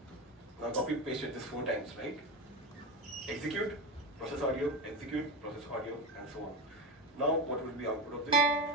now copy pasted this 4 times, right? execute, process audio, execute, process audio, and so on. Now, what will be output of this?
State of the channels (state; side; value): normal; both; correlation 0.19